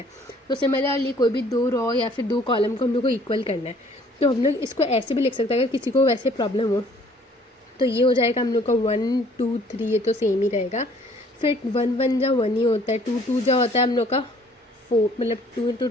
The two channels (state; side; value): normal; both; correlation 0.58